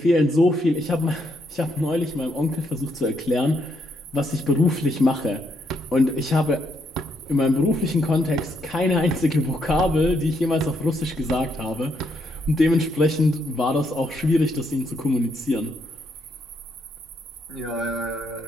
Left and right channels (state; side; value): normal; both; correlation 0.76